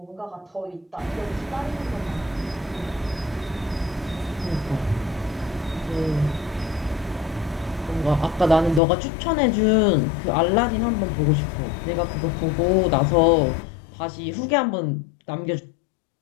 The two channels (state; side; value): drops out; right; at 8.8 s